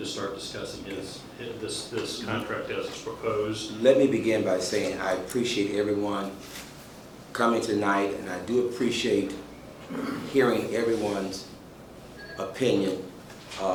start discussing this contract as it's proposed. Let me begin by saying I appreciate everyone coming tonight, and I do appreciate hearing everyone's opinion.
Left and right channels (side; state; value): both; identical; correlation 1.00